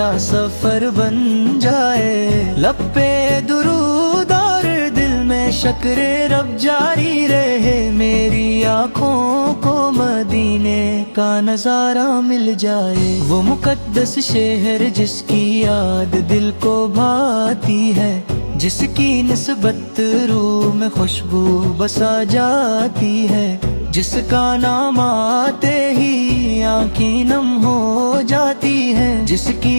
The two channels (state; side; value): inverted; both; correlation -1.00